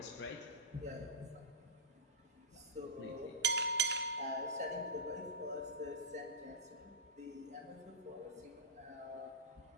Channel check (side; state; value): both; normal; correlation -0.17